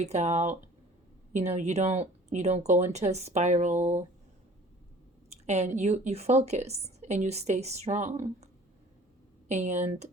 out. You don't go into a spiral. And you focus and you stay strong. And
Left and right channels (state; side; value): normal; both; correlation 0.48